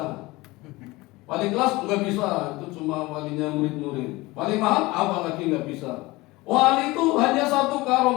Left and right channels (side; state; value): right; quieter; 21.3 dB